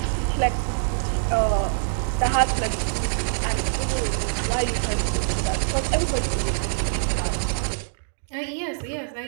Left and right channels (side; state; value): left; silent; digital silence